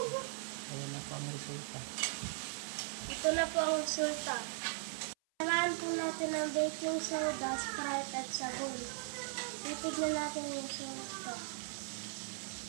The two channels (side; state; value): left; silent; 52 dB below the other